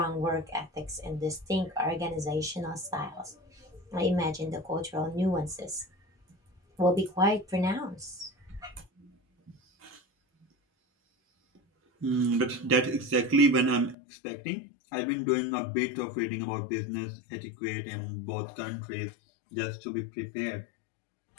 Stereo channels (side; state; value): right; drops out; at 14.0 s